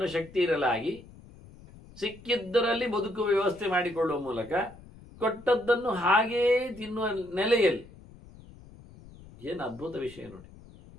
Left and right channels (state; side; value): noise; left; rumble, 21 dB below the sound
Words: ಶಕ್ತಿ ಇರಲಾಗಿ ಸಿಕ್ಕಿದ್ದರಲ್ಲಿ ಬದುಕುವ ವ್ಯವಸ್ಥೆ ಮಾಡಿಕೊಳ್ಳುವ ಮೂಲಕ ಕೊಟ್ಟದ್ದನ್ನು ಹಾಗೇ ತಿನ್ನುವ ನೆಲೆಯಲ್ಲಿ. ಏನು ಅದ್ಭುತ ವಿಷಯ ನೋಡಿ.